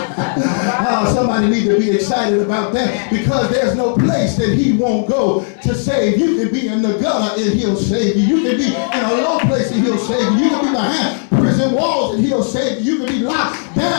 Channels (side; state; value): right; silent; digital silence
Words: Somebody need to be excited about that, because there's no place that he won't go to save. You can be in the gutter and he'll save you. You can be in a low place and he'll save you. You can be behind prison walls and he'll save you. You can be locked